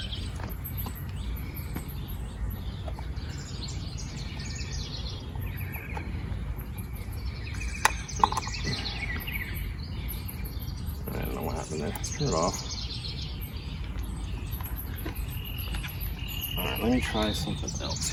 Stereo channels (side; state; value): both; identical; correlation 1.00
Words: I don't know what happened there. Let's turn it off. Alright, let me try something else